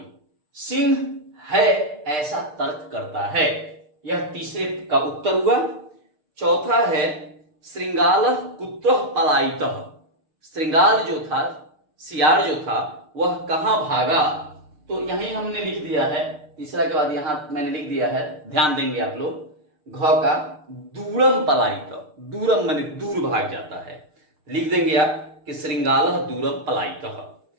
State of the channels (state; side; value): late; left; 6.6 ms